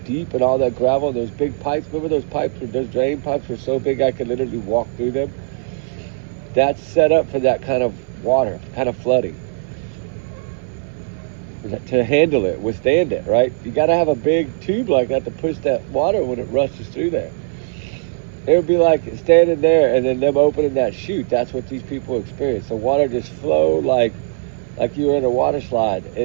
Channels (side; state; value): left; silent; 66 dB below the other